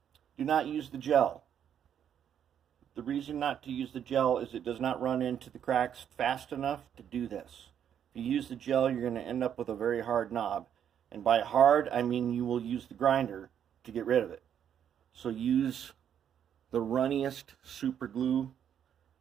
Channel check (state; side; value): quieter; left; 9.1 dB